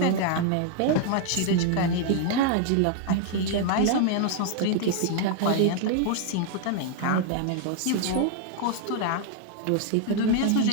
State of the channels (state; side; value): different; both; correlation 0.00